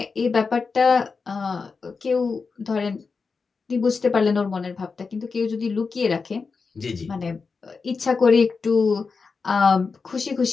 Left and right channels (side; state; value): right; quieter; 4.8 dB